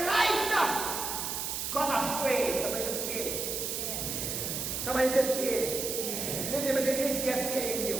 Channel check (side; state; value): right; noise; hiss, 3 dB below the sound